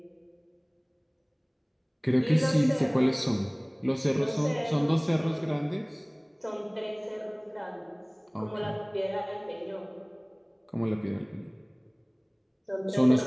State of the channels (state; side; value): identical; both; correlation 1.00